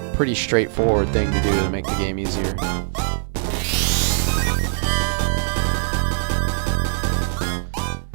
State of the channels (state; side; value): silent; left; digital silence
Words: pretty straightforward thing to do to make the game easier.